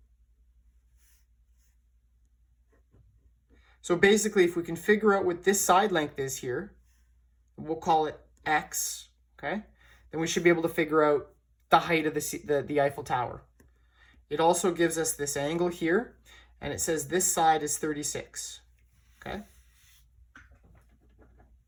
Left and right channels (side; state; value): both; identical; correlation 1.00